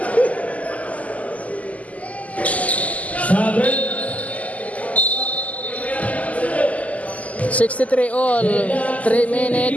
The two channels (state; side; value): late; right; 0.072 ms